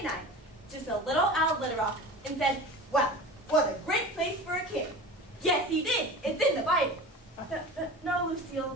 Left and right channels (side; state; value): both; normal; correlation 0.35